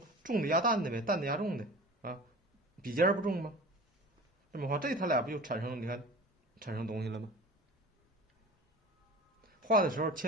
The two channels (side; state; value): both; normal; correlation 0.38